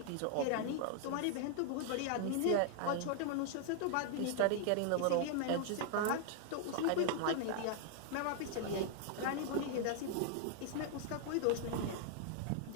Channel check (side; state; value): both; different; correlation -0.01